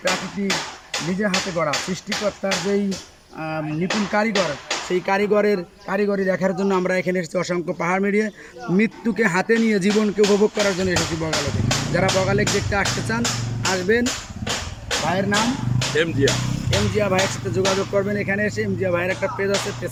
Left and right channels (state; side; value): identical; both; correlation 1.00